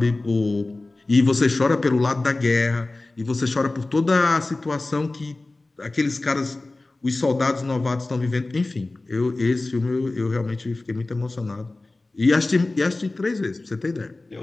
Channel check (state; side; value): quieter; right; 3.1 dB